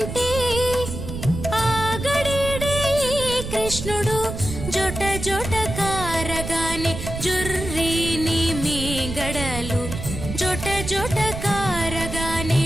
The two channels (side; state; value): right; noise; rumble, 7 dB below the sound